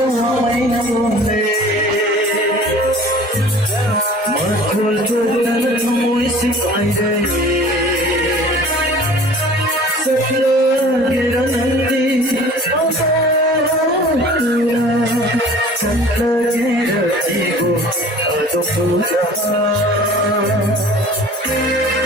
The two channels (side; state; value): both; normal; correlation 0.46